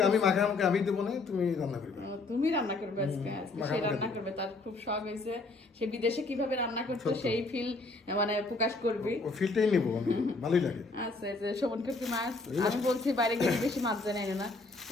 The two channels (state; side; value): quieter; right; 3.5 dB